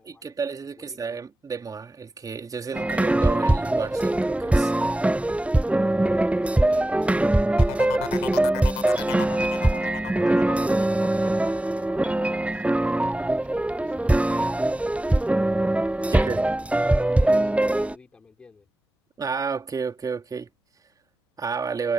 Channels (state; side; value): normal; both; correlation 0.95